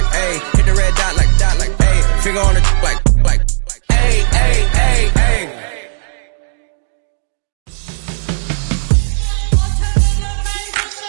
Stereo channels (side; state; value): left; silent; digital silence